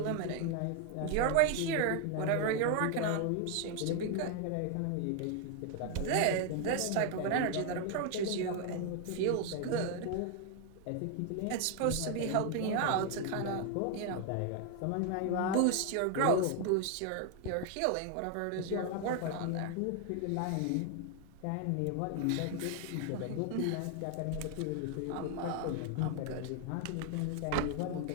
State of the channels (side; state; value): both; different; correlation 0.00